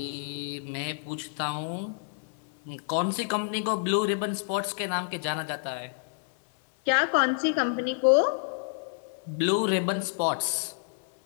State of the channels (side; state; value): right; silent; 59 dB below the other